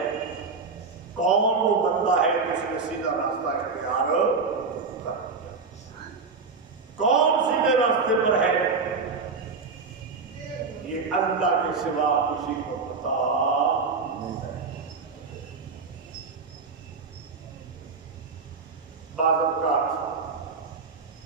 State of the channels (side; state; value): left; quieter; 4.7 dB